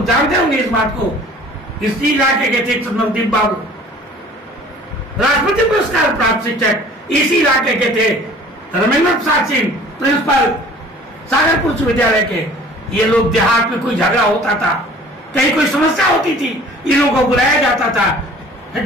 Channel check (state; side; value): normal; both; correlation 0.49